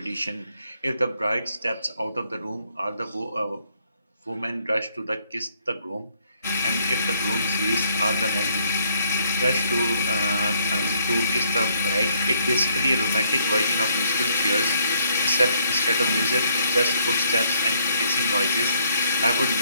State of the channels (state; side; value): inverted; both; correlation -0.68